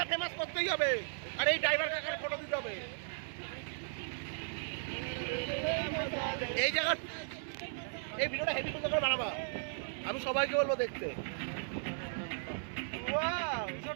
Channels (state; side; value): silent; left; 54 dB below the other